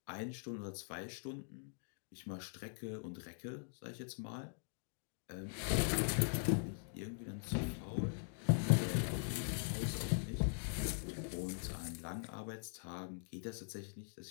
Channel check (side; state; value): right; silent; digital silence